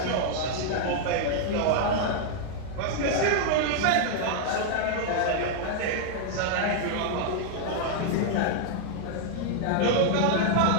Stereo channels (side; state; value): both; different; correlation 0.00